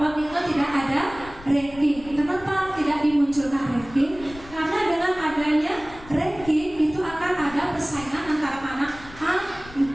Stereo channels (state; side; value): noise; left; rumble, 18 dB below the sound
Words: itu tidak ada ranking. Kenapa tidak dimunculkan ranking? Karena dengan adanya ranking itu akan ada persaingan antara anak A